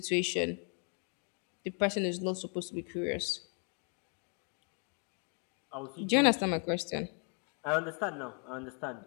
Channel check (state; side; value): quieter; right; 39.6 dB